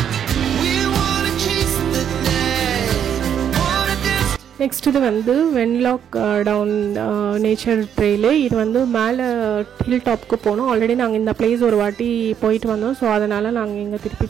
நெக்ஸ்ட் இது வந்து வென்லாக் டவுன் நேச்சர் ட்ரெயிலு. இது வந்து மேலே ஹில் டாப்புக்கு போனோம். ஆல்ரெடி நாங்கள் இந்த பிளேஸ் ஒரு வாட்டி போயிட்டு வந்தோம். ஸோ அதனால் நாங்கள் இங்கே திருப்பி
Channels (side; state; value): left; quieter; 8.8 dB